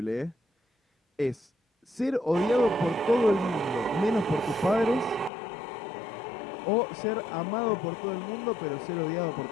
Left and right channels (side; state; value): right; drops out; at 5.3 s